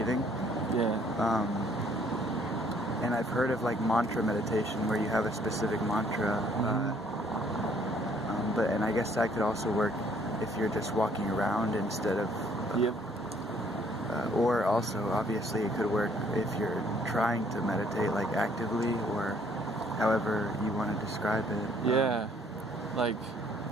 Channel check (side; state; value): both; normal; correlation 0.63